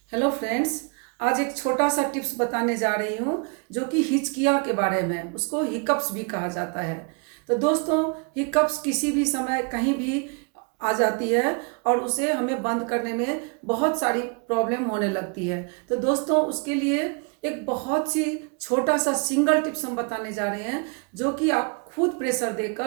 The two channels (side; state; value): left; quieter; 35.6 dB